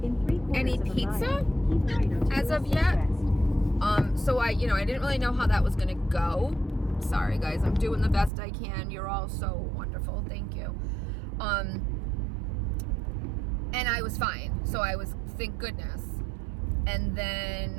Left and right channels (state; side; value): drops out; left; at 8.3 s